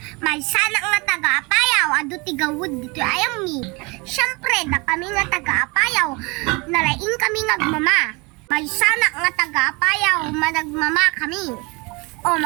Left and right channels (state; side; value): quieter; left; 27.4 dB